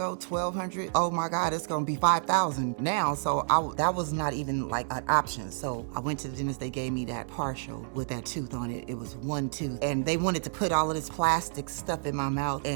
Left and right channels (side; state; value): left; silent; 58 dB below the other